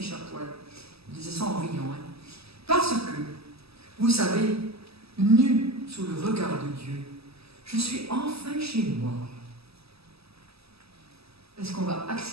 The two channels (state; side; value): late; left; 0.78 ms